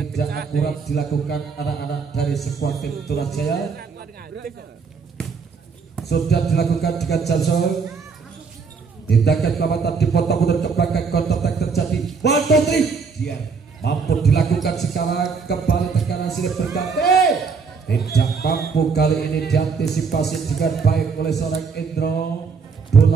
akurat dilakukan anak-anak dari skuad tim Toraja. Sudah dilakukan dengan Johnson. Tindakan pelamatan dipotong mundur ke belakang, counter attack terjadi. 1, 2, 3. Dia mampu dilakukan sekarang, kembali tekanan silih berganti. Tidak mampu kali ini diantisipasi dengan baik oleh seorang Indro.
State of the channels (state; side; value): quieter; left; 5.3 dB